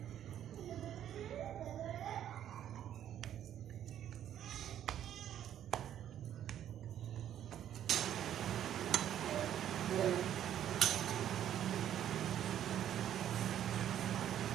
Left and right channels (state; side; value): quieter; left; 10.6 dB